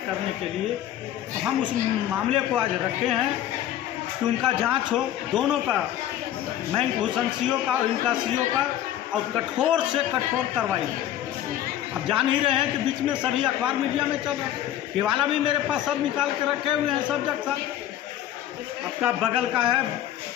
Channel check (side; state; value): right; quieter; 12.0 dB